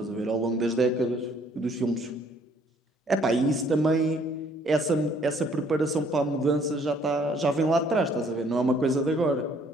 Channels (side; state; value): both; normal; correlation 0.62